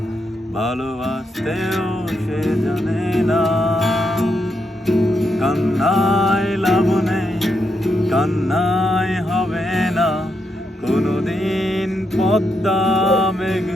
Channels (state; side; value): normal; both; correlation 0.81